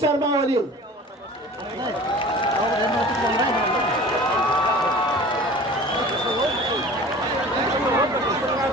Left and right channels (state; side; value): normal; both; correlation 0.42